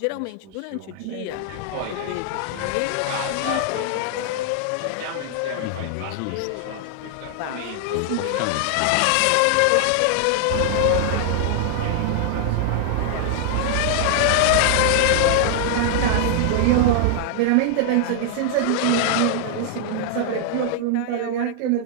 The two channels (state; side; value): different; both; correlation 0.00